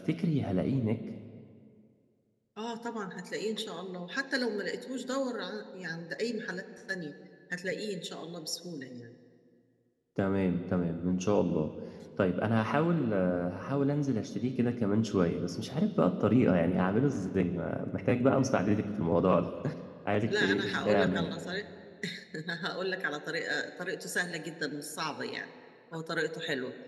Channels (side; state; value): both; identical; correlation 1.00